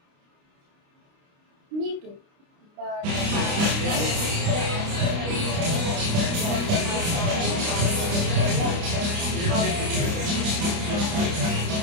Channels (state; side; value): late; left; 29 ms